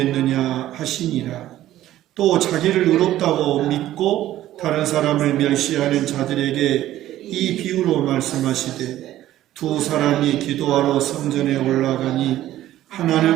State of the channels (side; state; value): left; quieter; 13.8 dB